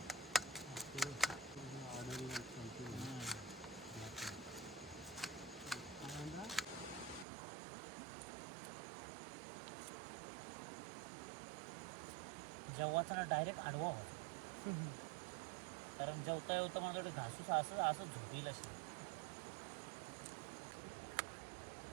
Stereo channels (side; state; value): left; drops out; at 7.2 s